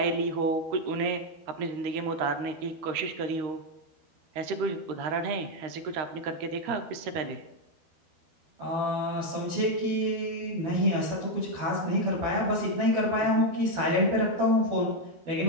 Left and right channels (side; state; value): left; late; 12 ms